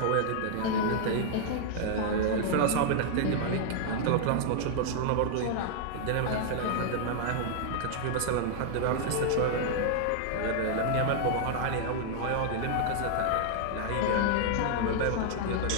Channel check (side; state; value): both; different; correlation -0.01